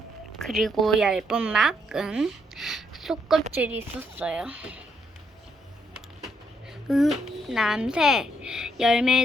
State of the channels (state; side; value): normal; both; correlation 0.75